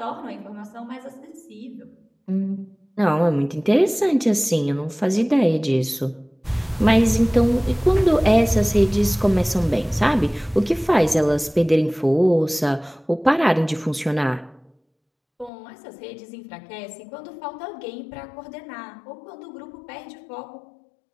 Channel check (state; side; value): drops out; right; at 15.5 s